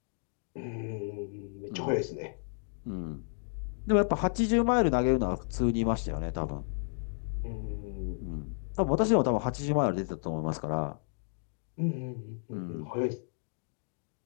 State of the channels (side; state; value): right; silent; digital silence